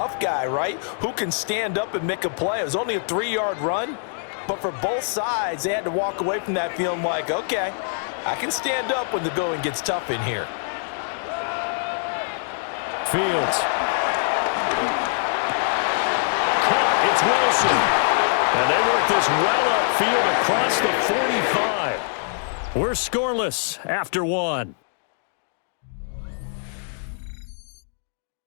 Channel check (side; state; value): right; silent; digital silence